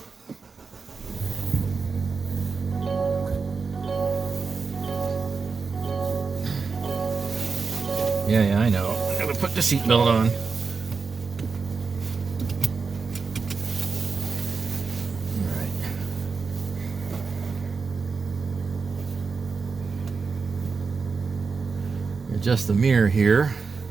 Yeah, I know. I gotta put the seatbelt on. Alright. Adjust the mirror here.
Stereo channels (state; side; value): quieter; left; 4.9 dB